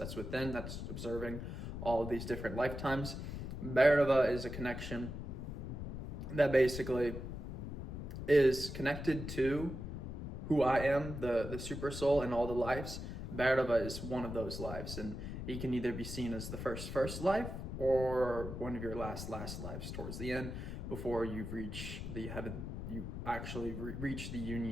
within, that's observing all of these different lifetimes. Bhairava is a connection that basically is connected to who I am, the super soul and all the lives. Bhairava is one of those lives, and he can either be seen as the first life or one of your last lives towards the end, before you reach the heaven, you actually reach the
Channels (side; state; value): left; noise; rumble, 6 dB below the sound